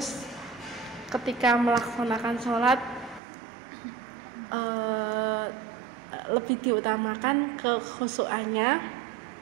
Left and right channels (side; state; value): left; drops out; at 3.2 s